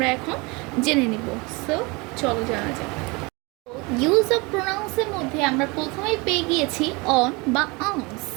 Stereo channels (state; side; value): quieter; left; 26.8 dB